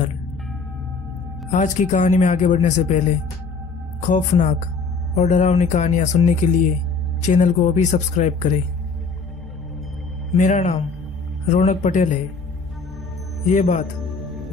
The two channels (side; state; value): right; quieter; 4.4 dB